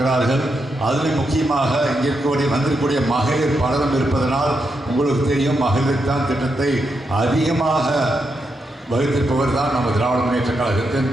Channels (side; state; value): both; normal; correlation 0.83